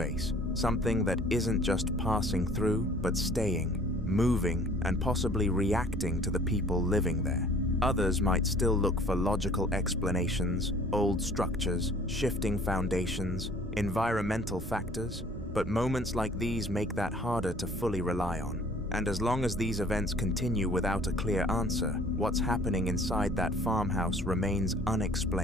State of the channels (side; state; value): both; normal; correlation 0.53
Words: something that isn't just passing through, but staying, moving, and possibly reacting to the people living there. Others might still look for logical explanations, old structures, shifting foundations, environmental factors, but moments like these make that harder to fully rely on. And as long as these events continue without a clear answer, what's happening inside that farmhouse remains